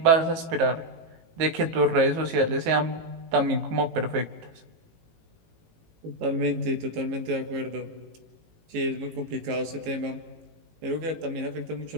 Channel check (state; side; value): late; left; 18 ms